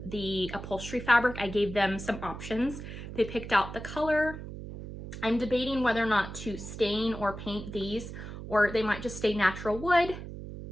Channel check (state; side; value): noise; right; hum, 10 dB below the sound